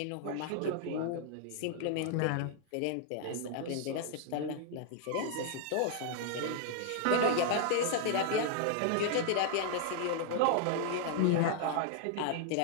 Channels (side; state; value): both; different; correlation -0.01